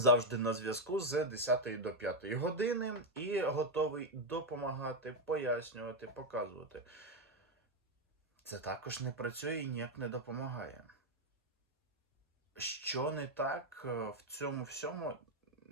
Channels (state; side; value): normal; both; correlation 0.04